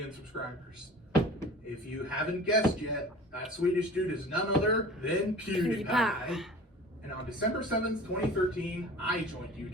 subscribers. If you haven't guessed yet, that Swedish dude is none other than PewDiePie. And on December 7th, 2013, I joined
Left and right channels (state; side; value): normal; both; correlation 0.42